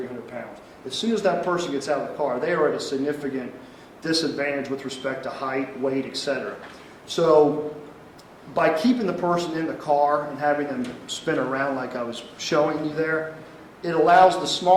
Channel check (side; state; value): both; identical; correlation 1.00